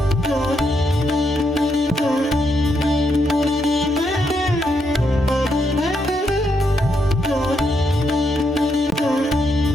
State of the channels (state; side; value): normal; both; correlation 0.79